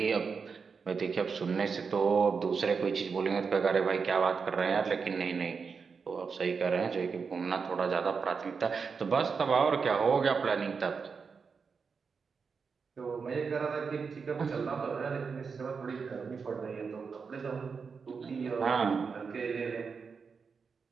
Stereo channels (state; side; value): quieter; left; 5.4 dB